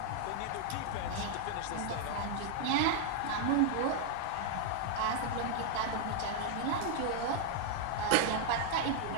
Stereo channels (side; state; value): both; different; correlation 0.00